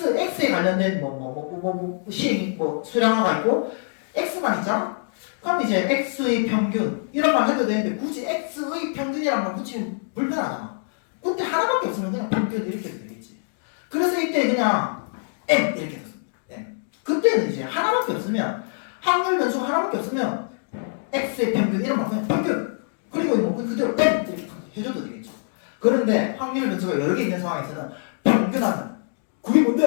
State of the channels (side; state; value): right; silent; digital silence